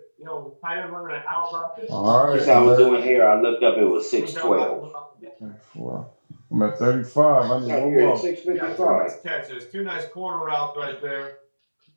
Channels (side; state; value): both; inverted; correlation -1.00